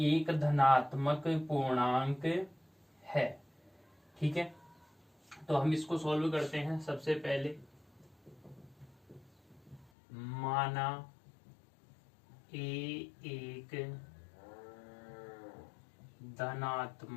धनात्मक पूर्णांक है। ठीक है, तो हम इसको सॉल्व करते हैं। सबसे पहले माना a एक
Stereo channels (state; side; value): drops out; right; at 9.9 s